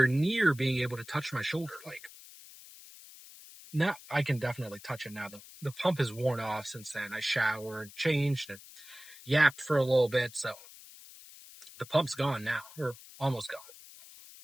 near being able to touch my shoulder. Like now, I can definitely touch it now. The pump is worn off since then. I showered, changed, and yapped for a little bit, so the pump's gone now, or almost gone.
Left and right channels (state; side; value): noise; left; hiss, 18 dB below the sound